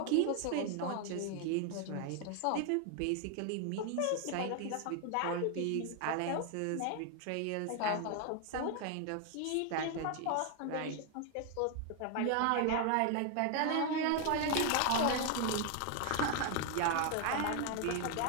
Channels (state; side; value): different; both; correlation 0.01